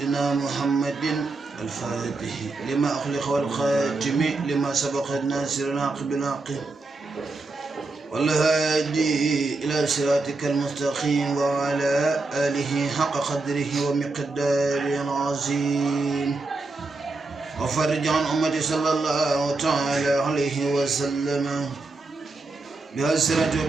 محمد الفاتح لما أخلق والخاتم لما سبق الناصر العاقب العاقب والهادي إلى صراطك المستقيم وعلى آله حق قدره ومقداره العظيم وفرج عن أمتي صلى الله تعالى عليه وسلم بأسرة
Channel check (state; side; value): quieter; left; 3.4 dB